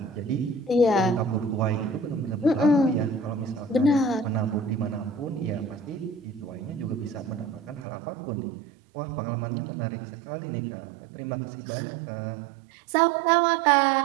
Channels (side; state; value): left; drops out; at 7.9 s